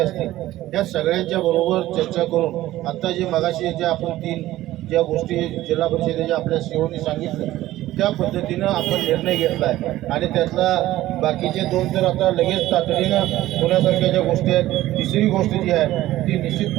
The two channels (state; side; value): quieter; left; 15.3 dB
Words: या सगळ्यांच्या बरोबर चर्चा करून आता जे मगाशी ज्या आपण 3 ज्या गोष्टी जिल्हा परिषदेच्या आपल्या सीओनी सांगितलं त्या पद्धतीनं आपण निर्णय घेतला आहे. आणि त्यातला बाकीचे 2 तर आता लगेच तातडीनं होण्यासारख्या ज्या गोष्टी आहेत. तिसरी गोष्ट जी आहे ती